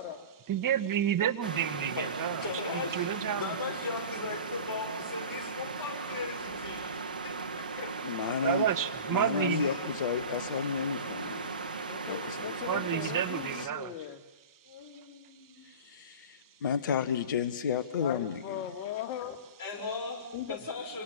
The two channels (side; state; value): both; inverted; correlation -0.33